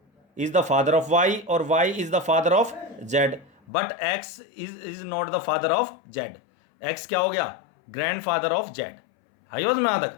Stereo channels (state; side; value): drops out; right; at 3.5 s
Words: is the father of Y और Y is the father of Z, but X is not the father of Z. X क्या हो गया? Grandfather of Z. I was में तक।